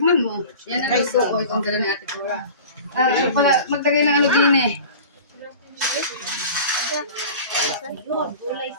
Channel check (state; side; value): inverted; both; correlation -0.39